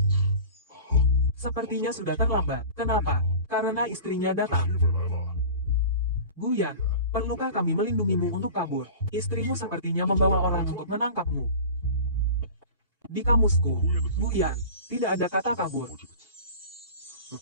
Sepertinya sudah terlambat. Kenapa? Karena istrinya datang. Guyan, perlukah kami melindungimu untuk kabur? Istrimu sepertinya membawa orang untuk menangkapmu. Di kamusku, Guyan, tidak ada kata kabur.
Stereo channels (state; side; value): inverted; both; correlation -0.37